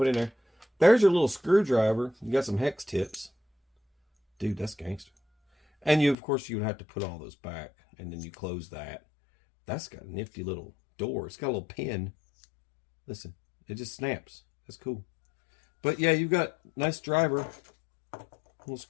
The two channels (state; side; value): drops out; right; at 6.2 s